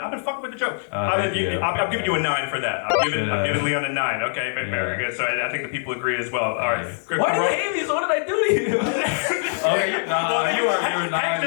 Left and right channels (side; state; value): right; silent; 63 dB below the other